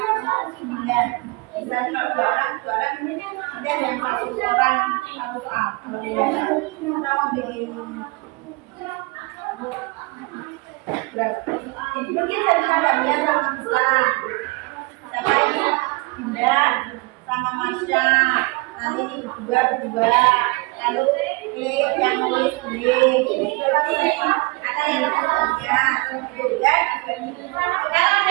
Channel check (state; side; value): quieter; left; 25.7 dB